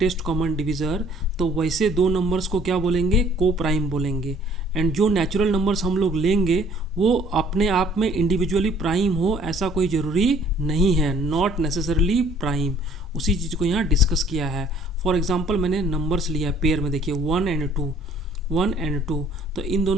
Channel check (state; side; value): normal; both; correlation 0.57